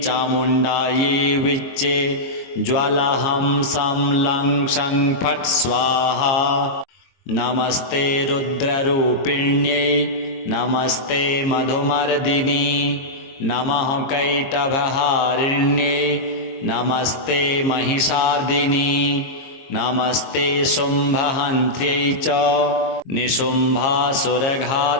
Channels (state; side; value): late; right; 22 ms